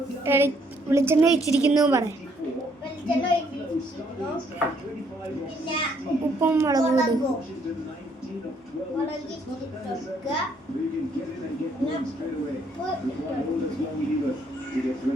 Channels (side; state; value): both; normal; correlation 0.68